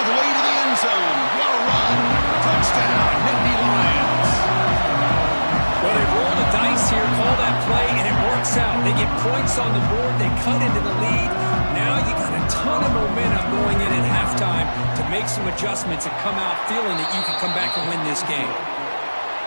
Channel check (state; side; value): inverted; both; correlation -1.00